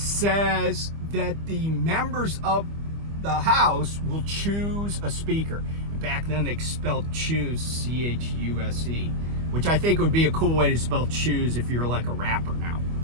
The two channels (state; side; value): late; left; 25 ms